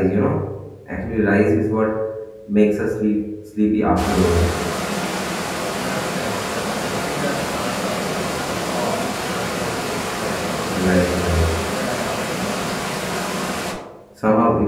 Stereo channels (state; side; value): identical; both; correlation 1.00